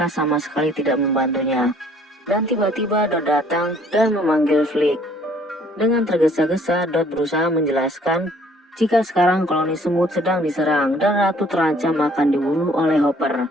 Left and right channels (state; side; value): normal; both; correlation 0.59